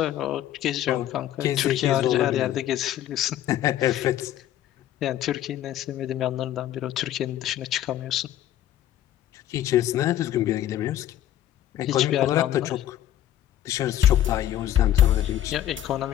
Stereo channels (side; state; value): right; quieter; 12.2 dB